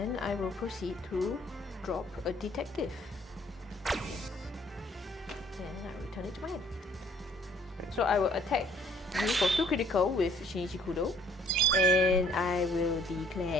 I will proceed to drop a detective. And I return it to my hand. So I will attack you for 2 critical with Shinichi Kudo. And I will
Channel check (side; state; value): both; normal; correlation 0.60